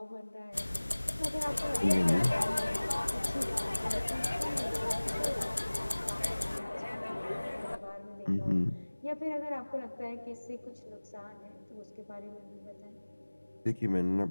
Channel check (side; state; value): both; inverted; correlation -1.00